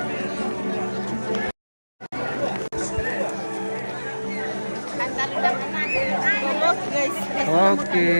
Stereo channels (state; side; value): inverted; both; correlation -1.00